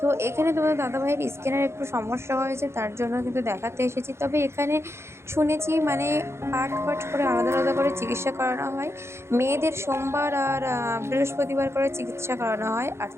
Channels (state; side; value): late; left; 0.13 ms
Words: এখানে তোমাদের দাদাভাইয়ের স্কিনের একটু সমস্যা হয়েছে, তার জন্য কিন্তু দেখাতে এসেছি। তবে এখানে শুনেছি মানে পার্ট পার্ট করে আলাদা আলাদা করে চিকিৎসা করানো হয়। মেয়েদের সোমবার আর বৃহস্পতিবার করে চিকিৎসা করানো হয়, আর